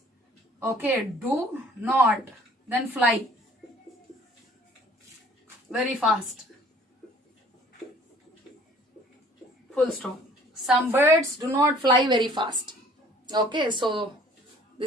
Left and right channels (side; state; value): both; normal; correlation 0.54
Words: Okay, do not. Then fly. Very fast. Full stop. Some birds do not fly very fast. Okay, so